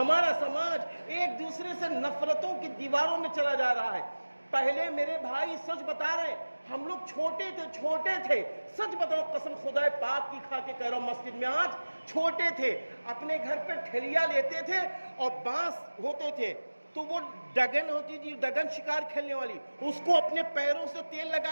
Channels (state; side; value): inverted; both; correlation -1.00